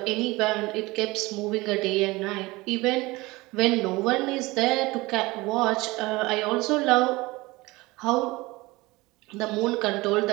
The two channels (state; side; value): quieter; left; 21.6 dB